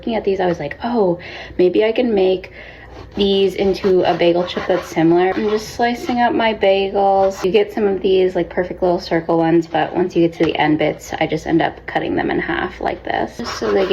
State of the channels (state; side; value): identical; both; correlation 1.00